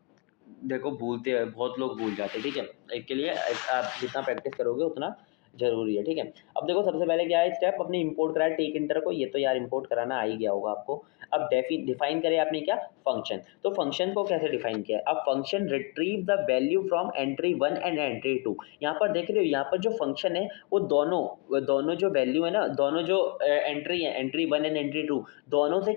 देखो भूलते हैं, बहुत लोग भूल जाते हैं, ठीक है। इसके लिए आप जितना प्रैक्टिस करोगे उतना ज़रूरी है, ठीक है। अब देखो सबसे पहले क्या है स्टेप, अपने इंपोर्ट करा है टेक इंटर को, ये तो यार इंपोर्ट कराना आ ही गया होगा आपको। अब डिफाइन करे आपने क्या, फंक्शन। तो फंक्शन को कैसे डिफाइन किया है, अब function retrieve the value from entry 1 and entry 2। यहाँ पर देख रहे हो, यहाँ पर जो फंक्शन है वो दोनों जो वैल्यू है ना, दोनों जो एंट्री है, एंट्री 1 एंड एंट्री 2, दोनों से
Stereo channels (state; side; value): quieter; right; 27.5 dB